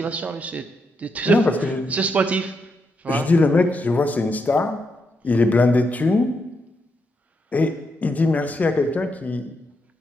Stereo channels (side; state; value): both; normal; correlation 0.81